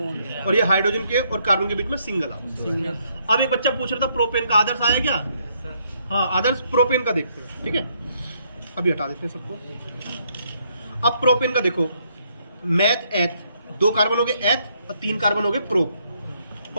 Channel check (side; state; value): both; inverted; correlation -0.71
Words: और ये हाइड्रोजन के और कार्बन के बीच में सिंगल आबंध। अब एक बच्चा पूछ रहा था प्रोपेन का आदर्श आया क्या? हाँ आदर्श प्रोपेन का देखते हैं, ठीक है। अभी हटा देते हैं सबको। अब प्रोपेन का देखो, मैथ एथ, 2 कार्बन हो गए एथ और 3 कार्बन हो गए प्रो,